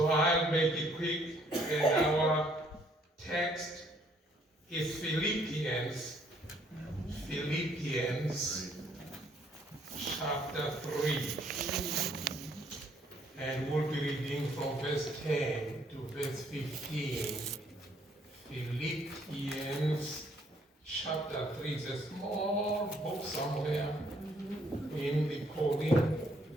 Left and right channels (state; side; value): normal; both; correlation 0.66